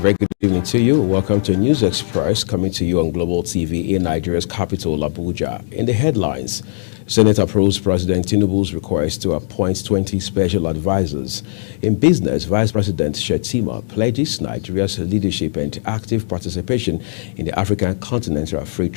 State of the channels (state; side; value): silent; right; digital silence